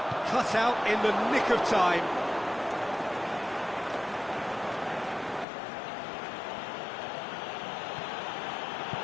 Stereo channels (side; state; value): right; drops out; at 5.5 s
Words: Cut out in the nick of time.